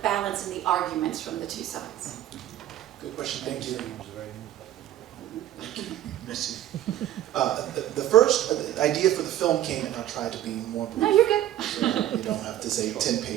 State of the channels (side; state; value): left; quieter; 12.6 dB